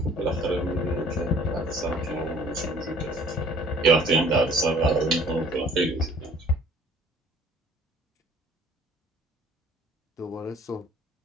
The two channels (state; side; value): normal; both; correlation 0.53